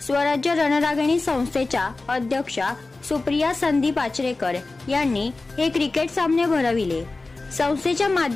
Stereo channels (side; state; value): right; quieter; 3.4 dB